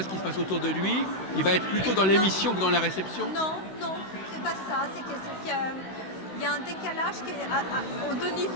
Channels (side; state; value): right; late; 16 ms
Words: ce qui se passe autour de lui. Il va être plutôt dans l'émission que dans la réception. Non, c'est pas ça. C'est qu'il y a un décalage qui est aux deux